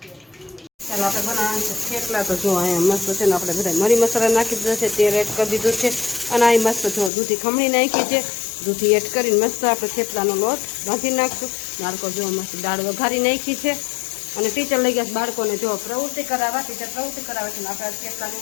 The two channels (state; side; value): drops out; right; at 7.1 s